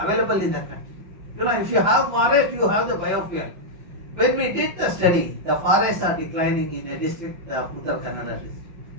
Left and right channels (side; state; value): left; late; 5.5 ms